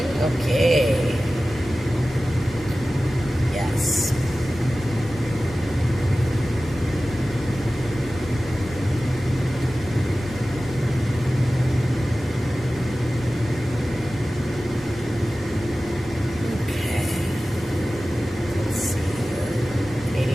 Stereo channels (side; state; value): both; normal; correlation 0.96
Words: Okay. Yes. Okay.